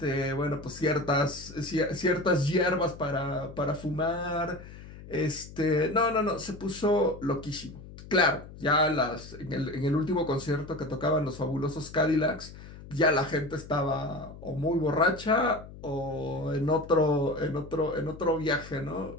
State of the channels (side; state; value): left; noise; hum, 16 dB below the sound